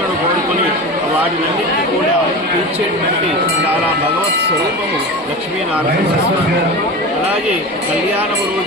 కోరుకొని వాటినన్నింటినీ కూడా తీర్చేటువంటి చాలా భగవత్ స్వరూపము లక్ష్మీనారాయణ స్వామి. అలాగే కళ్యాణము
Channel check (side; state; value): both; normal; correlation 0.28